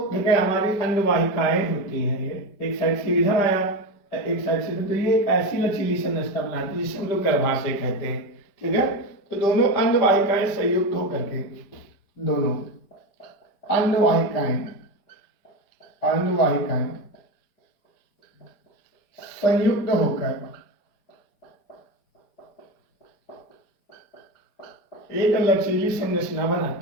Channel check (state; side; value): late; right; 5.0 ms